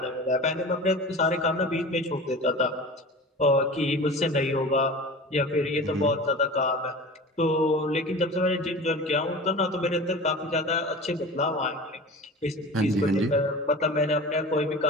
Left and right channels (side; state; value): both; normal; correlation 0.35